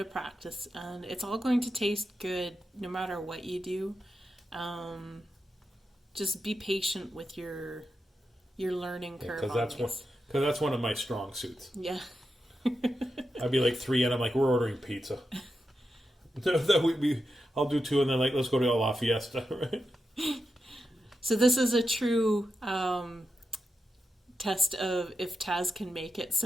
practice, and it's all going to taste good no matter what you do. Just be patient with your learning curve. Because that's one of my strong suits. Yeah. I'd be like 3, and I'm like, we're ordering pizza. I'll do 2, and then like let's go to La Fiesta, right? So this is a true test of if Taz can make it,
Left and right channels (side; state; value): both; normal; correlation 0.88